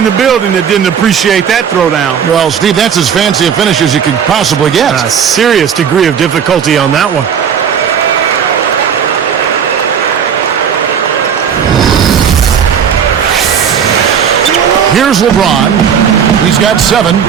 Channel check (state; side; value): quieter; left; 7.8 dB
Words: the building that didn't appreciate that throwdown. Well, Steve, that's as fancy a finish as you could possibly get. A serious degree of difficulty on that one. Here's LeBron. He's got 7.